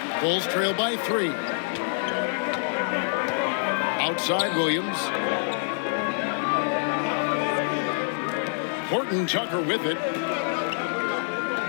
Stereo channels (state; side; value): silent; right; digital silence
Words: Bulls trail by 3. Outside Williams. Horton Tucker with it.